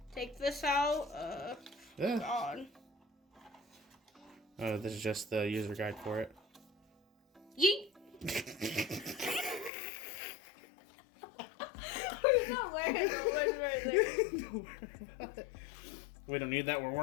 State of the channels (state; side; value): drops out; right; at 9.7 s